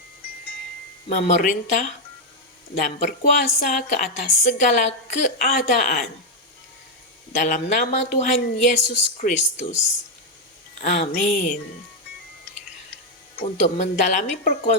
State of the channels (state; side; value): normal; both; correlation 0.01